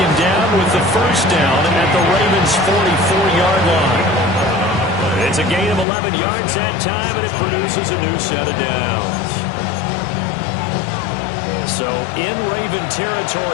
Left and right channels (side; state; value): right; drops out; at 5.9 s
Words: down with the 1st down at the Ravens' 44-yard line. It's a gain of 11 yards that time, and it produces a new set of downs. So in Raven